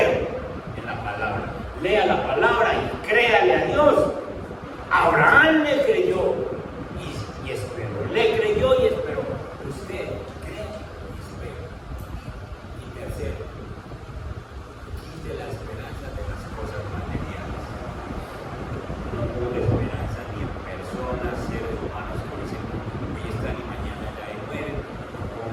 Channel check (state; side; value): identical; both; correlation 1.00